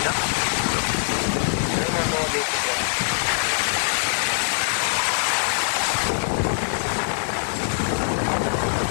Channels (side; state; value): right; silent; digital silence